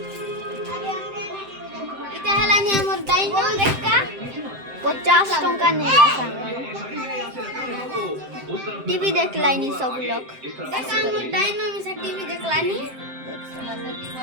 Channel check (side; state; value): left; late; 7.7 ms